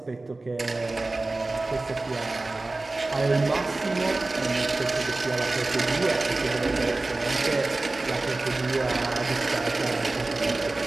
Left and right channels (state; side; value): quieter; left; 3.1 dB